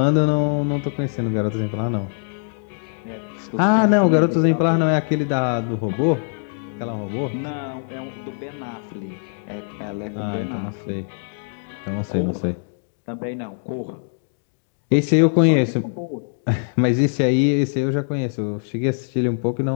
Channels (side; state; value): right; silent; digital silence